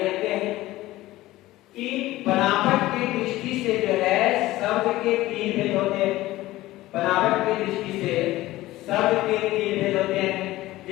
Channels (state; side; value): quieter; right; 17.1 dB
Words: देखते हैं कि बनावट की दृष्टि से जो है शब्द के तीन भेद होते हैं। बनावट की दृष्टि से शब्द के तीन भेद होते हैं,